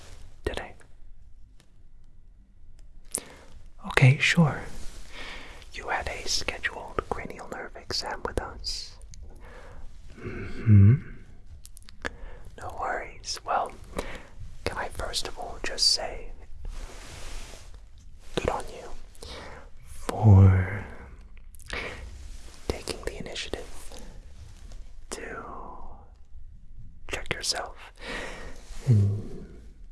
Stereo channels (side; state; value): both; identical; correlation 1.00